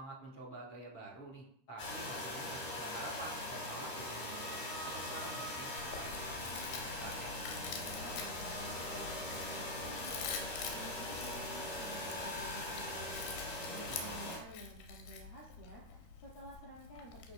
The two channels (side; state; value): right; late; 13 ms